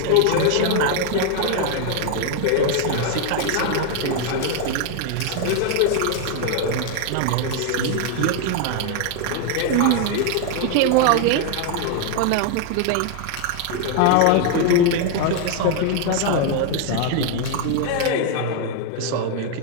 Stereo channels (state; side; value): different; both; correlation 0.00